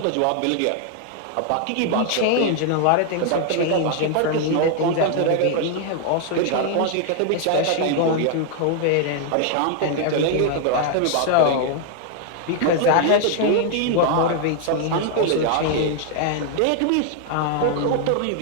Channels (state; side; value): different; both; correlation 0.00